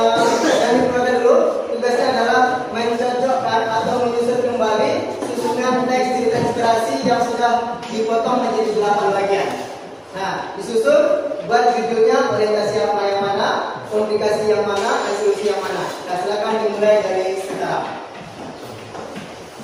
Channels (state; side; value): identical; both; correlation 1.00